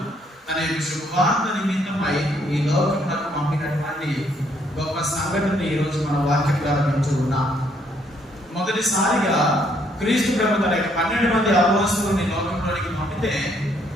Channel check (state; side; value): normal; both; correlation 0.69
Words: తన యొక్క శుభవార్త నిమిత్తమై ఈ లోకంలో పంపినటువంటి గొప్ప సంఘటన ఈరోజు మన వాక్యం ద్వారా వింటూ ఉన్నాం. మొదటిసారిగా క్రీస్తు ప్రభు తన యొక్క 12 మంది అపోస్తలుని లోకంలోనికి పంపితే